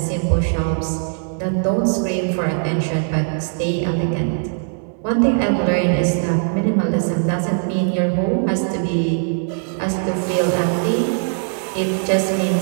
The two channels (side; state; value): left; silent; 66 dB below the other